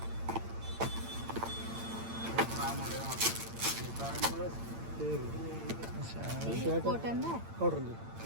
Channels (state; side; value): late; left; 8.8 ms